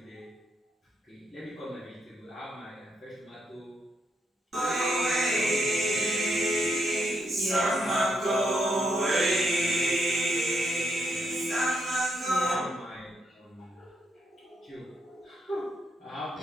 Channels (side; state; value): both; normal; correlation 0.78